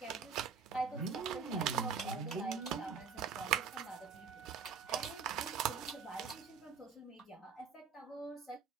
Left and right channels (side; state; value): left; quieter; 6.1 dB